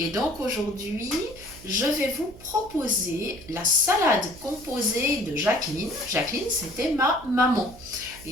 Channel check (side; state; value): right; noise; hum, 20 dB below the sound